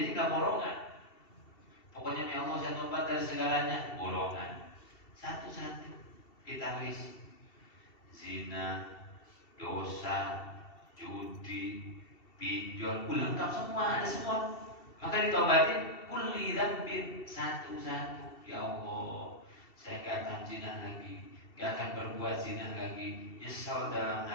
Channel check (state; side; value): late; right; 2.7 ms